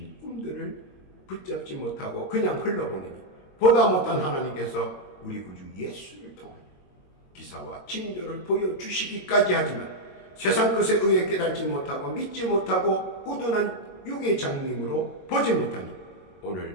꿈들을 붙잡지 못하고 그냥 흘러보내니 보다 못한 하나님께서 우리 구주 예수를 통하여 기사와 징조를 보여주시기까지 하지만 세상 것에 의해 깨달지 못하고 믿지 못하고 우둔한 육의 장님으로 보지 못하니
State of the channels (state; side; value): late; right; 22 ms